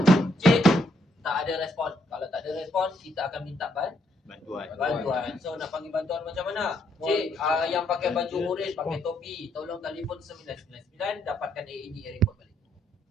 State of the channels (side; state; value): both; normal; correlation 0.73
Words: Tak ada respon. Kalau tak ada respon, kita akan minta bantuan. So nak panggil bantuan macam mana? Cik, yang pakai baju orange, pakai topi, tolong telefon 999 dapatkan AED report balik.